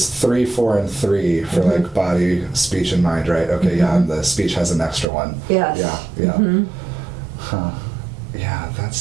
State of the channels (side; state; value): left; drops out; at 5.1 s